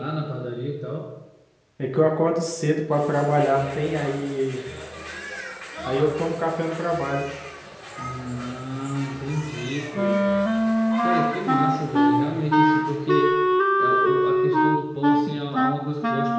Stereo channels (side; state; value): both; identical; correlation 1.00